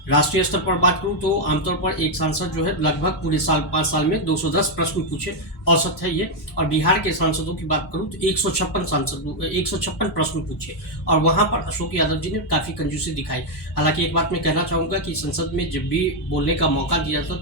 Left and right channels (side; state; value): both; normal; correlation 0.01